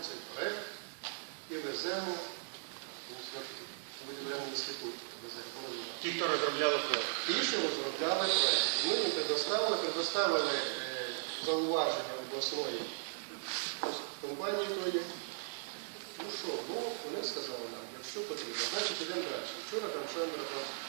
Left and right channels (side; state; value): left; silent; digital silence